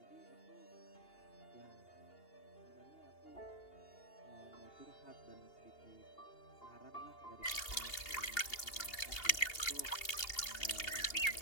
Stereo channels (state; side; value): late; right; 2.8 ms